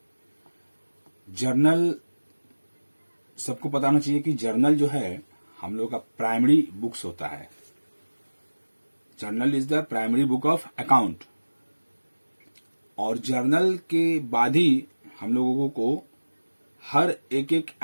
जर्नल, सबको पता होना चाहिए कि जर्नल जो है हम लोग का प्राइमरी बुक्स होता है। Journal is the primary book of account. और जर्नल के बाद ही हम लोगों को हर एक एक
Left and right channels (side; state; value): both; inverted; correlation -1.00